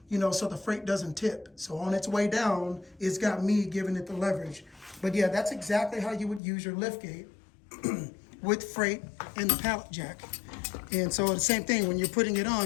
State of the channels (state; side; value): drops out; right; at 6.4 s